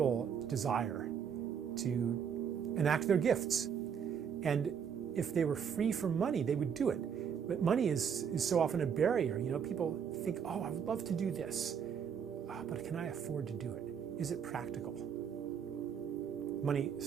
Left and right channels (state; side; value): quieter; left; 7.5 dB